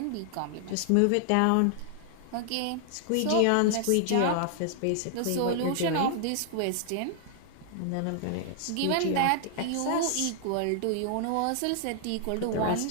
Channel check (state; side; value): different; both; correlation 0.00